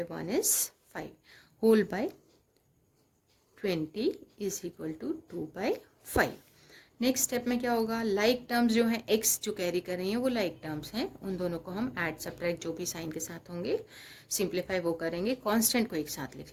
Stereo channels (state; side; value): identical; both; correlation 1.00